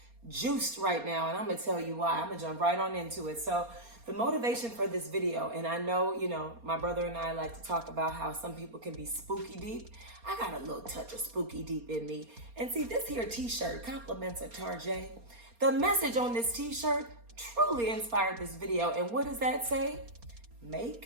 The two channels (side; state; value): left; late; 4.3 ms